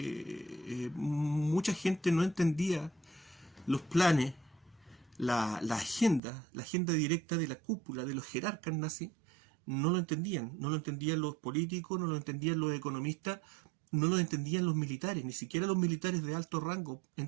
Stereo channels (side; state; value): left; drops out; at 6.2 s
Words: mucha gente no entendía los planes, la agenda directa de la cúpula, de los jerarcas nazis. No lo entendían los políticos, no lo entendían los economistas, no lo entendían los militares, ni siquiera los militares de alto rango